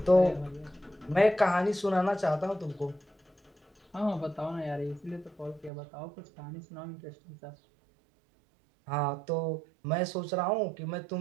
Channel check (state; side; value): drops out; left; at 5.7 s